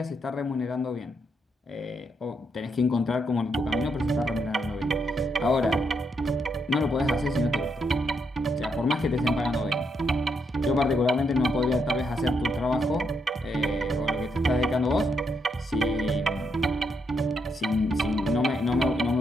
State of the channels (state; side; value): normal; both; correlation 0.79